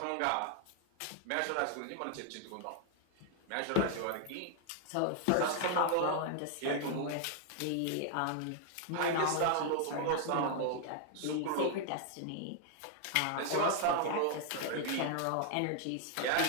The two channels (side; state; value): both; different; correlation 0.00